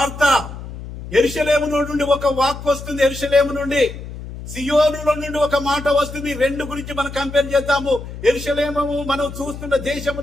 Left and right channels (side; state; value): left; noise; hum, 11 dB below the sound